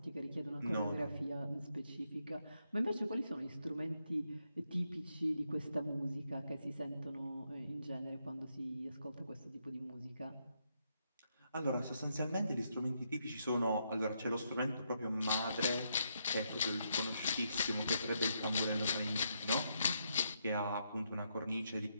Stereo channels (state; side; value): inverted; both; correlation -0.79